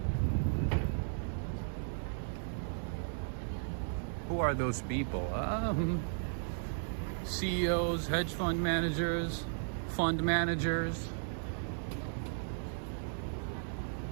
Who are those people? CEOs, hedge fund managers, fund managers,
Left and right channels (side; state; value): left; silent; 54 dB below the other